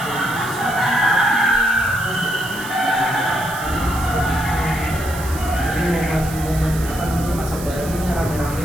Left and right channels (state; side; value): noise; right; hiss, 13 dB below the sound